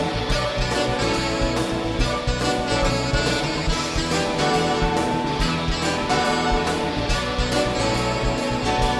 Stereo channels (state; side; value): identical; both; correlation 1.00